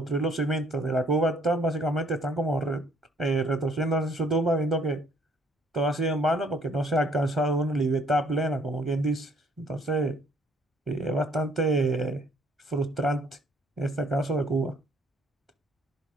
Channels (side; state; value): both; normal; correlation 0.62